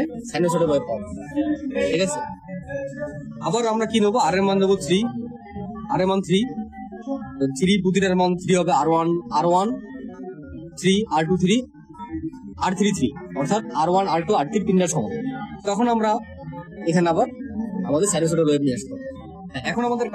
সাইনোসয়েডের ওয়েভ পাবো, ঠিক আছে। আবার আমরা কি নেবো, আর এর মান নেবো 3, আর এর মান 3, প্রতিটার মান 3 হবে। R1 3, R2 3, R3 3, অর্থাৎ R1 R2 R3 তিনটার সমান। তখন আমরা এখানে আবার আমাদের সাইনোসয়েডের ওয়েভ নিয়ে আসবো। এখন আমাদের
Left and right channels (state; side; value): identical; both; correlation 1.00